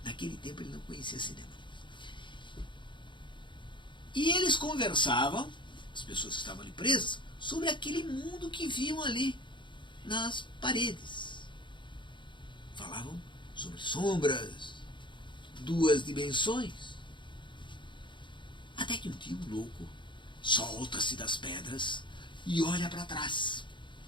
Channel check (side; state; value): right; late; 0.23 ms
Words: Naquele tempo ele não conhecia cinema. E eles conversavam, as pessoas que estavam ali presas, sobre aquele mundo que viam ali nas paredes. Falavam sobre sombras, duas dimensões. Até que um dia um louco solta-se das pedras e olha para trás.